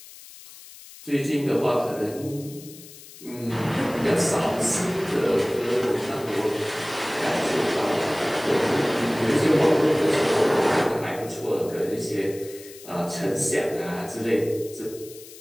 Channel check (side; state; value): left; noise; hiss, 18 dB below the sound